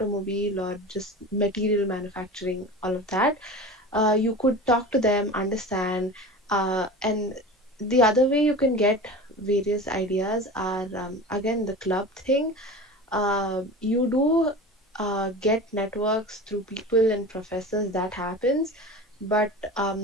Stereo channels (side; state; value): both; normal; correlation 0.33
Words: or just material manufacturing, all of that, you could talk to them, understand. And the other way you can get various ideas are, again, the club thing. You do get networks through people and professors, that happens. But